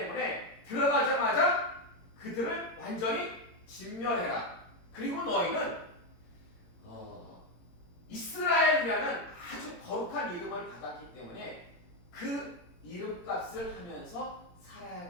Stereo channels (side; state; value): right; late; 17 ms